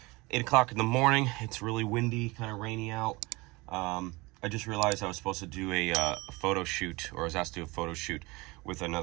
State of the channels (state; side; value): quieter; left; 23.9 dB